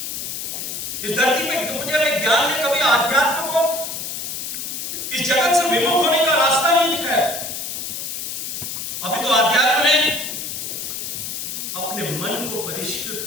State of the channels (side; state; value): left; noise; hiss, 5 dB below the sound